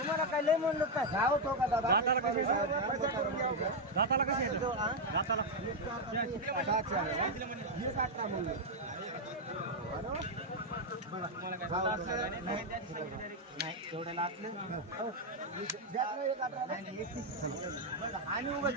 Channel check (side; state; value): both; normal; correlation 0.01